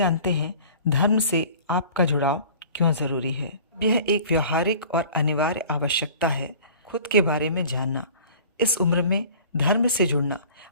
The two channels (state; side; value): inverted; both; correlation -0.45